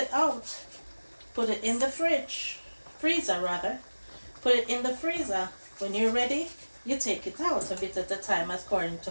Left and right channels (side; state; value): both; inverted; correlation -1.00